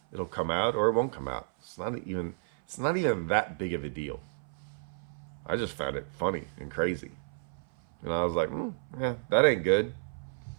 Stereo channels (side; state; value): left; silent; 57 dB below the other